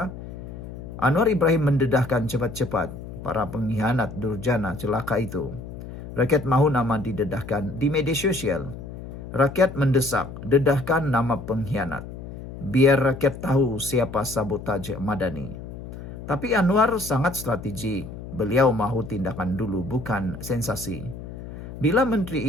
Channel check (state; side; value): noise; left; hum, 11 dB below the sound